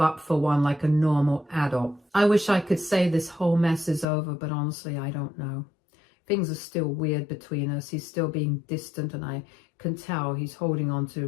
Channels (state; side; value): drops out; right; at 4.0 s